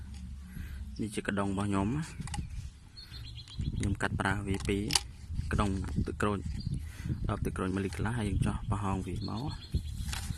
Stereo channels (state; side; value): identical; both; correlation 1.00